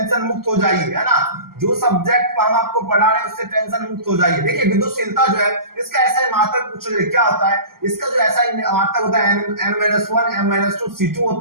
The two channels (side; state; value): left; late; 0.92 ms